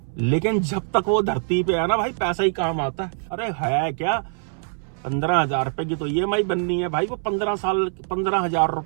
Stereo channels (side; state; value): left; silent; 61 dB below the other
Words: लेकिन जब तक वो धरती पे है ना भाई पैसा ही काम आता है। अरे है क्या, 15,000 रुपए की तो EMI बननी है भाई, वो 15,000